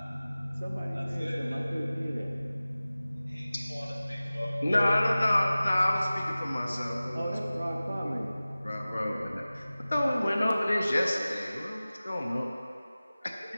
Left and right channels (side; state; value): both; inverted; correlation -0.97